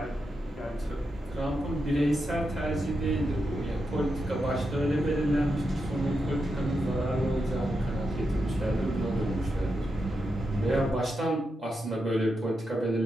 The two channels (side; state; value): both; normal; correlation 0.86